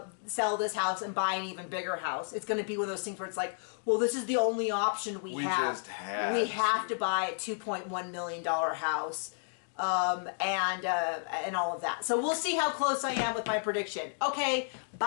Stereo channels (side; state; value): right; silent; digital silence